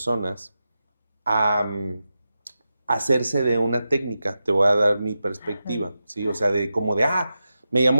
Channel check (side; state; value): both; inverted; correlation -0.91